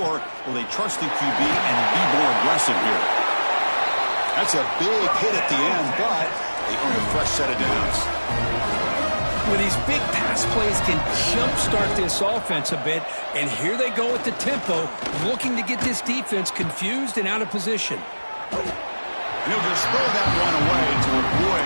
will they trust the QB and be more aggressive here? That's a big hit at the end, but they earn a fresh set of downs. Well, these big pass plays can jumpstart this offense a bit, and here they go at the tempo, looking to get this defense confused and out of position. And he'll just throw that one away to avoid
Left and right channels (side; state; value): both; inverted; correlation -1.00